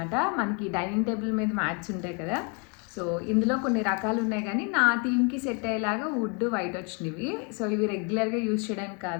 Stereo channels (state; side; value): quieter; right; 35.1 dB